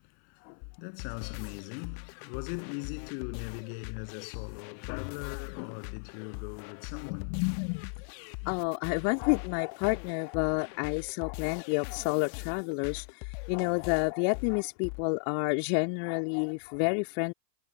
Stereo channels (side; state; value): right; silent; 56 dB below the other